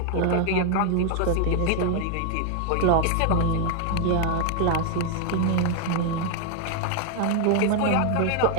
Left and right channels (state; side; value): different; both; correlation 0.00